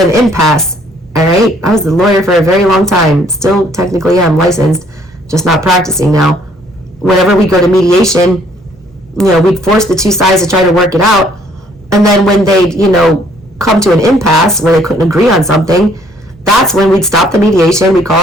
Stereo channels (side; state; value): both; normal; correlation 0.63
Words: impasse. All right? I was the lawyer for a very long time. Still, technically, I'm licensed, just not practicing now. Whenever we go to mediation, we'd force the two sides to try to work it out. And then when they, come to an impasse where they couldn't agree on something, that's when we'd stop the mediation, we'd